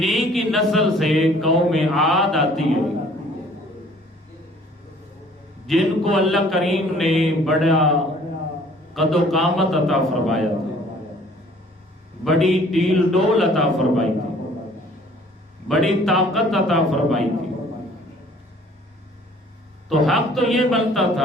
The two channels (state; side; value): normal; both; correlation 0.55